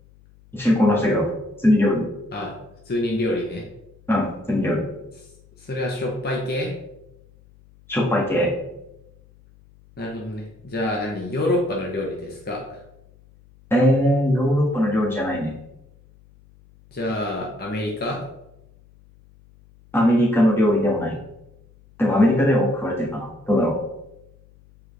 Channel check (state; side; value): noise; left; hum, 27 dB below the sound